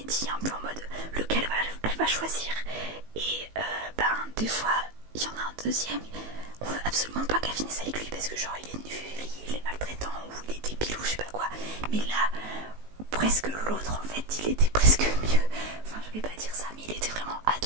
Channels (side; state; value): left; late; 19 ms